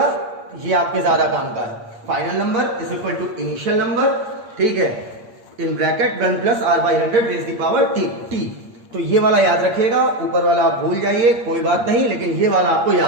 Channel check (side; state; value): left; late; 8.6 ms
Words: ये आपके ज्यादा काम का है। Final number is equal to initial number, ठीक है, in bracket 1 plus r by 100 raise the power t. तो ये वाला याद रखिएगा, ऊपर वाला आप भूल जाइए, कोई बात नहीं, लेकिन ये वाला आपको